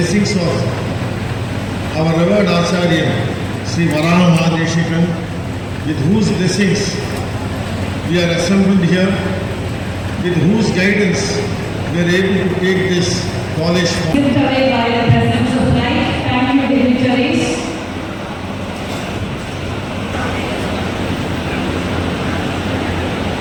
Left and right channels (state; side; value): identical; both; correlation 1.00